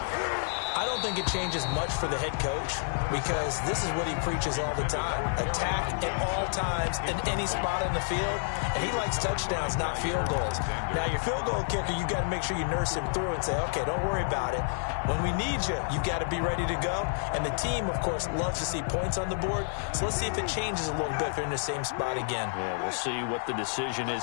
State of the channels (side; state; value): right; silent; digital silence